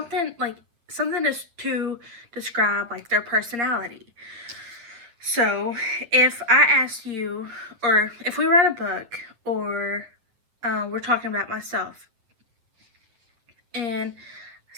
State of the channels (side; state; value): left; late; 8.5 ms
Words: to describe like their personality. So, if I ask you, or if we read a book, or we're talking about myself, and